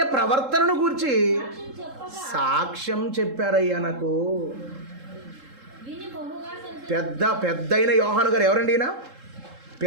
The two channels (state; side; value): late; left; 3.7 ms